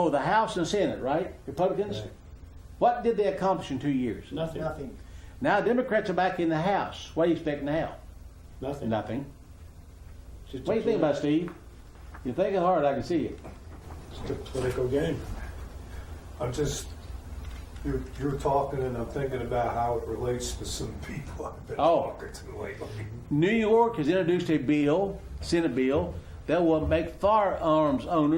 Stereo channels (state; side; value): identical; both; correlation 1.00